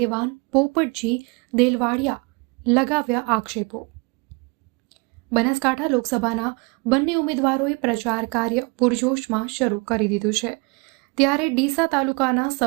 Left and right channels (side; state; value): left; quieter; 29.4 dB